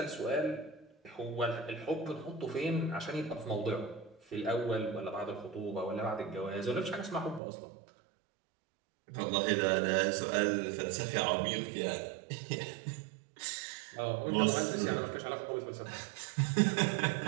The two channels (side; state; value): left; drops out; at 7.4 s